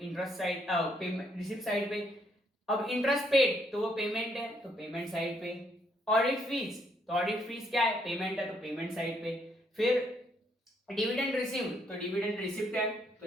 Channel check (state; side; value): normal; both; correlation 0.72